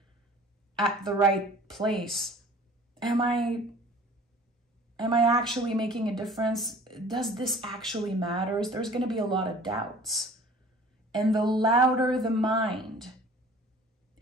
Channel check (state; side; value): normal; both; correlation 0.47